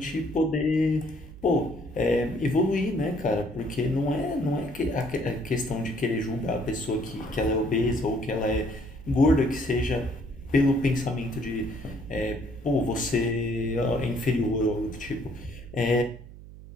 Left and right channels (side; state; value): right; noise; hum, 17 dB below the sound